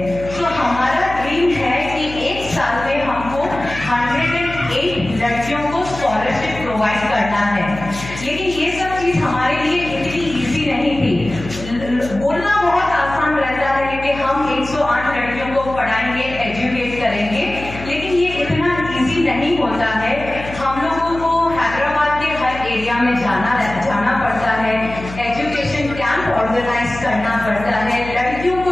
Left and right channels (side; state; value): left; noise; hum, 12 dB below the sound